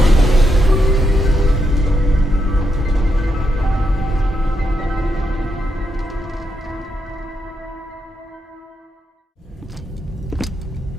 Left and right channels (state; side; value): normal; both; correlation 0.82